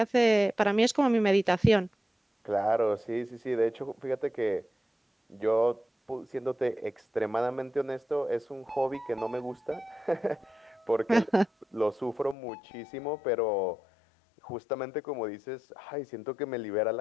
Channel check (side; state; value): right; drops out; at 12.4 s